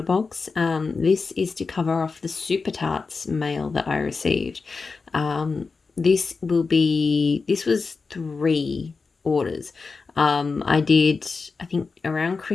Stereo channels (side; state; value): right; quieter; 4.5 dB